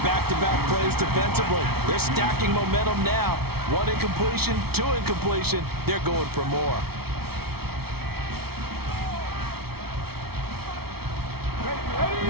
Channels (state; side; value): late; left; 0.95 ms